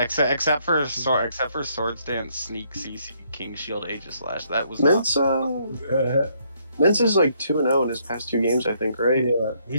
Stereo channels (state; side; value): inverted; both; correlation -0.70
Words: for Swords Dance, Sneak, CC, King Shield, Aegis Slash. That was Mence. Yeah, Mence is like 2-0 in his past 2 games, I think, right?